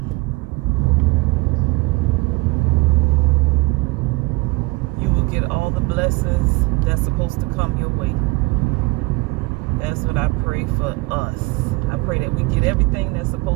you will get all the blessings that's supposed to come your way. That's what I pray for us. I pray that we get everything that's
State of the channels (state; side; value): quieter; left; 23.3 dB